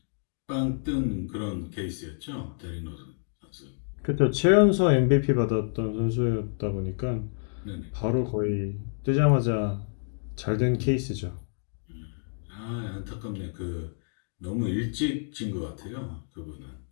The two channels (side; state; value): right; silent; digital silence